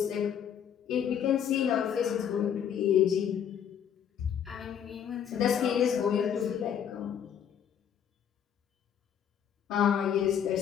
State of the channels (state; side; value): quieter; right; 8.7 dB